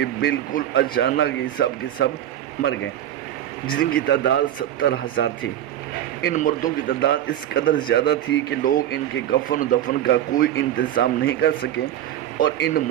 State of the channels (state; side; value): quieter; left; 11.7 dB